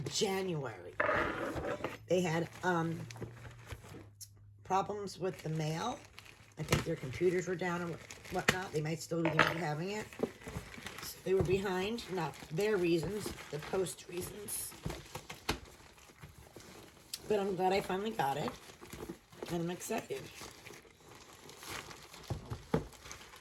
They had problems with the mail. I think their computers were down and whatnot. They might still be having it. So they were behind, not their reasons, the post reasons. But I'm glad I finally got it, and I'm excited.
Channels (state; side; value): identical; both; correlation 1.00